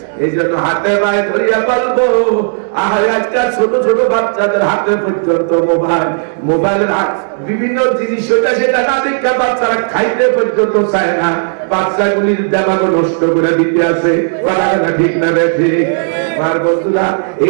এই জন্য হাতে পায়ে ধরিয়া বলবো আজকাল ছোট ছোট বাচ্চাদের হাতে পর্যন্ত মোবাইল, মোবাইলের বিভিন্ন জিনিস সেটা না দেখে বাচ্চারা খাইতে পর্যন্ত চায় না। বাচ্চাগুলির দেমাগও নষ্ট করে দিতে আছে। কথা কথা ঠিক না বেঠে? আর বন্ধুরা,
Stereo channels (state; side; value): silent; left; digital silence